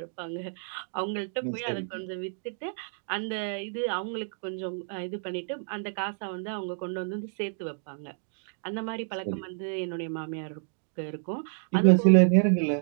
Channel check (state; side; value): silent; left; digital silence